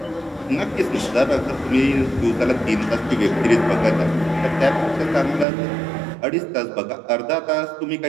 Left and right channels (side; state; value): left; drops out; at 5.5 s